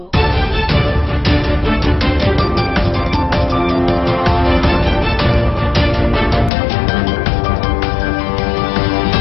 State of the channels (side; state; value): right; drops out; at 6.5 s